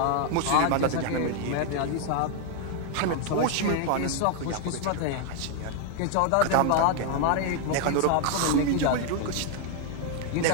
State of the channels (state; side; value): different; both; correlation 0.00